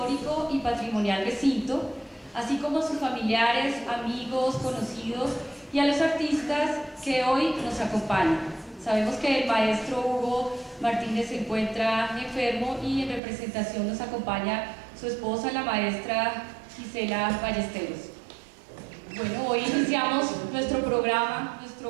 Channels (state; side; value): drops out; left; at 13.2 s